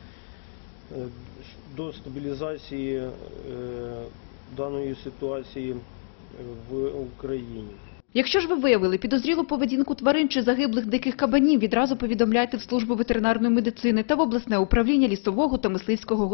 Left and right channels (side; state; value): right; silent; digital silence